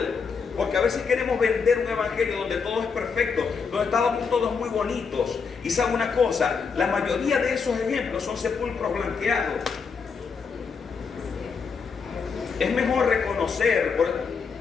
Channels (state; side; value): quieter; right; 5.5 dB